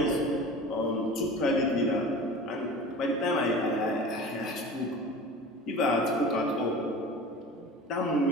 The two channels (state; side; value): normal; both; correlation 0.37